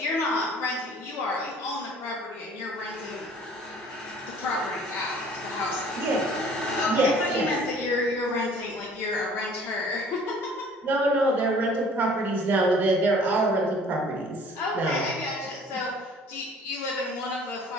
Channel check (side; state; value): both; normal; correlation 0.52